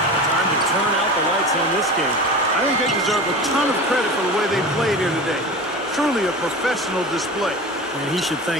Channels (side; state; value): both; normal; correlation 0.32